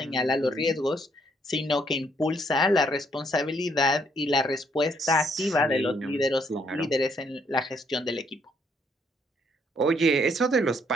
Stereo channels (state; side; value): normal; both; correlation 0.69